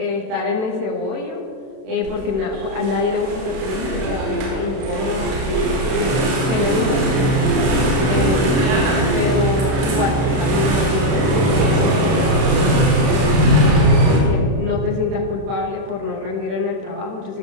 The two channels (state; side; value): late; left; 32 ms